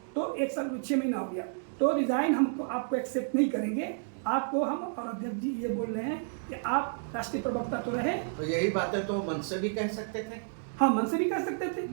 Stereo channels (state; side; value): silent; left; digital silence